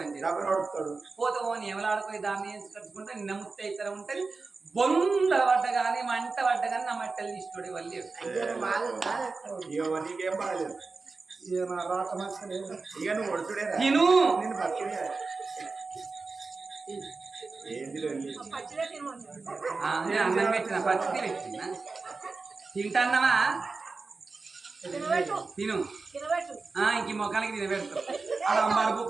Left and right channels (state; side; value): quieter; left; 4.0 dB